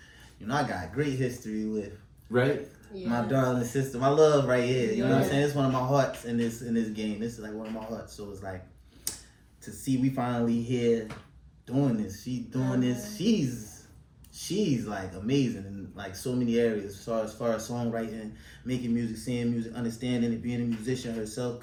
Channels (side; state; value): both; identical; correlation 1.00